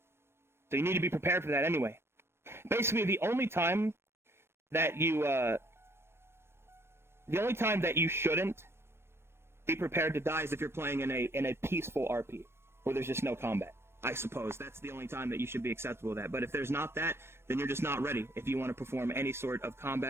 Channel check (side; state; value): left; late; 0.12 ms